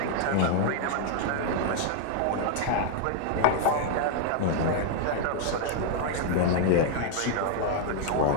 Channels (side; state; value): both; different; correlation 0.00